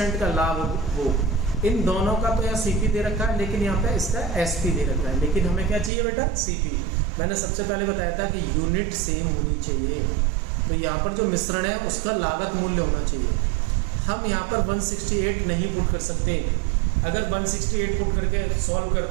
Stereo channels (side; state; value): left; drops out; at 5.9 s